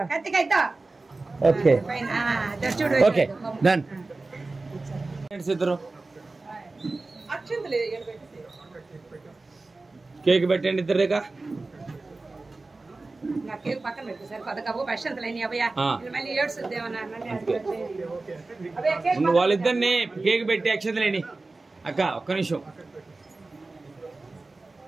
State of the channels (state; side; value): quieter; left; 3.4 dB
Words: Okay okay done. ఇద్దరు కేక్ పెట్టండి ఇద్దరుగా. వాళ్ళిద్దరిని కేక్ పెట్టి అక్షతలేని. అక్క ఒక్క నిమిషం.